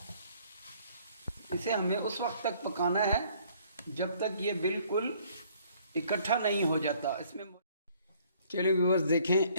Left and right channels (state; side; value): inverted; both; correlation -0.60